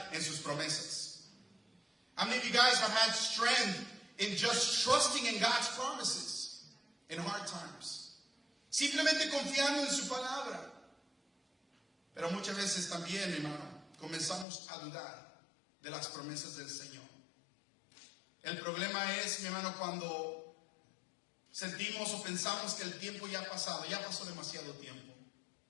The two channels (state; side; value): drops out; right; at 14.5 s